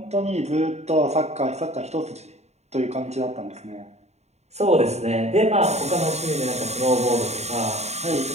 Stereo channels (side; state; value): left; late; 0.32 ms